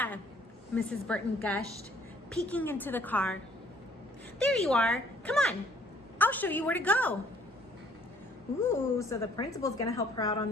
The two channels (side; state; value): both; normal; correlation 0.61